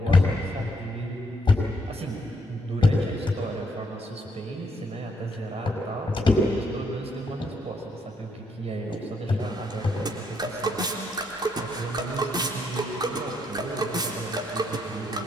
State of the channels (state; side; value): normal; both; correlation 0.74